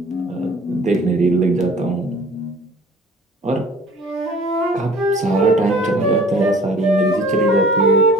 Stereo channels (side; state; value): both; normal; correlation 0.48